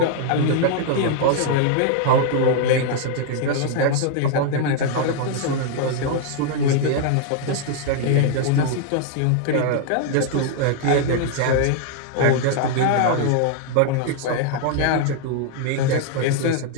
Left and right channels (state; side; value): different; both; correlation 0.00